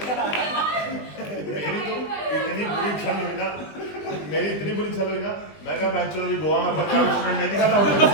मेरी तो इतनी बुरी छल हुई ना, मैं कहा भाई चलो गोवा में 50 रेस्टोरेंट नहीं दिखा था।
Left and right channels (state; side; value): late; right; 20 ms